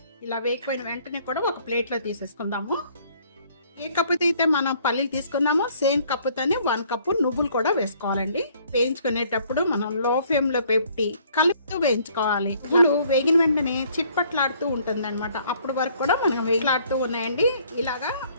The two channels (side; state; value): both; inverted; correlation -0.61